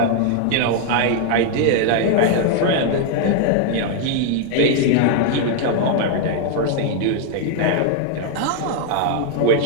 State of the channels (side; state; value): both; different; correlation 0.00